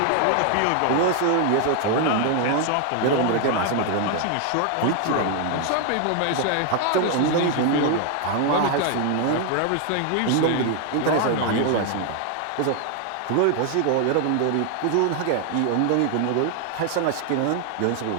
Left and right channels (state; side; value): different; both; correlation 0.00